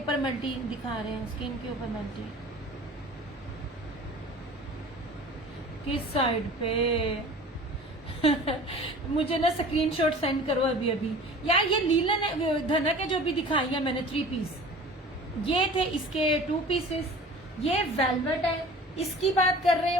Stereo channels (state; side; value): normal; both; correlation 0.42